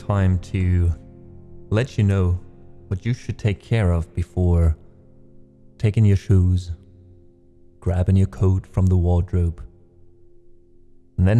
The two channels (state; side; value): identical; both; correlation 1.00